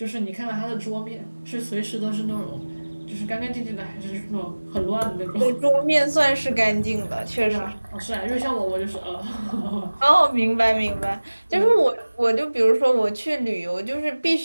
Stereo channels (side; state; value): both; inverted; correlation -1.00